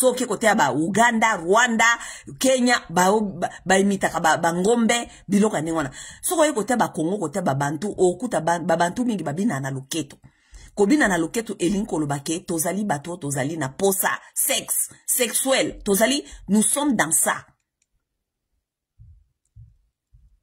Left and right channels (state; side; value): identical; both; correlation 1.00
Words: ke kotea ba Uganda, Rwanda, Kenya, ba imita ka ba ngombe, biloka ningwana. So ko kotea ba Congo, kotea ba Bantu, okuta ba Bantu mingi babina na luketu. Kobina na loketu elinkolo bake, tozali bato, tozali na posa, sexe, sexuel, tozali, nous sommes dans ça.